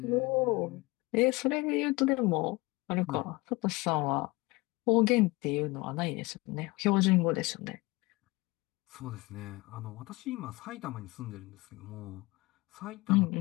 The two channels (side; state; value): right; quieter; 22.8 dB